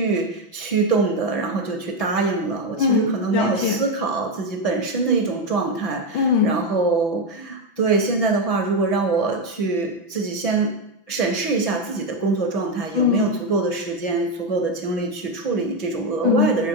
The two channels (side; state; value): right; late; 6.0 ms